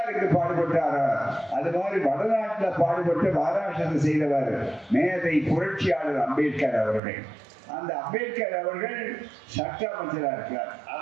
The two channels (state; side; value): drops out; left; at 7.0 s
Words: பாடுபட்டாரோ அது மாதிரி வடநாட்டில் பாடுபட்டு மகாராஷ்டிரத்தில் செய்தவர் மேதை புரட்சியாளர் அம்பேத்கர் அவர்கள். அந்த அம்பேத்கர் அவர்கள் சட்ட அமைச்சராக இருக்கிறார்,